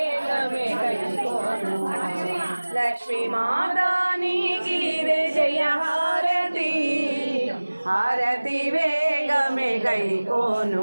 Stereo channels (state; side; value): inverted; both; correlation -1.00